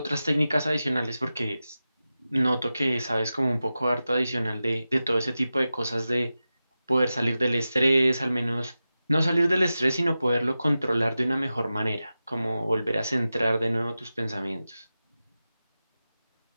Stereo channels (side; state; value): both; inverted; correlation -0.93